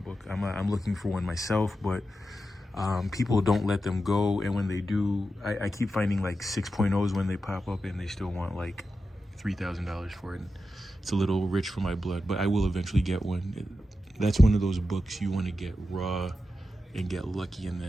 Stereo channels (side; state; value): both; normal; correlation 0.90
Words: book. I'm looking for one myself, but people don't let them go. And when they do, I keep finding like 6.0s when they pop up, and they still want like $3,000 for it. It's a little rich for my blood, but I will eventually get one. That's one of those books you want to get raw and get lucky, and